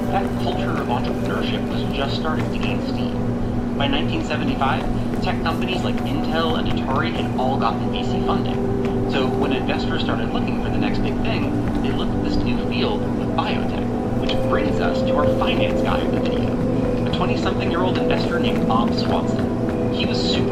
that culture of entrepreneurship was just starting to gain steam. By 1975, tech companies like Intel and Atari had all gotten VC funding. So when investors started looking for the next big thing, they looked at this new field of biotech. Which brings us to our finance guy of the video, a 20-something-year-old investor named Bob Swanson. He was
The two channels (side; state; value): both; identical; correlation 1.00